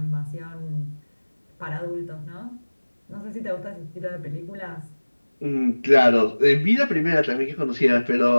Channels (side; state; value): both; inverted; correlation -1.00